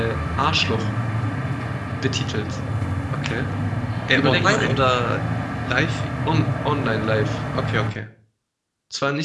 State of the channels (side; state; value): both; identical; correlation 1.00